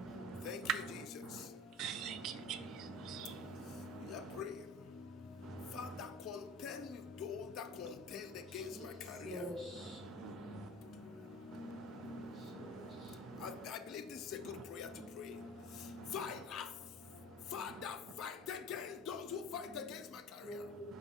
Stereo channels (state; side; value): normal; both; correlation 0.40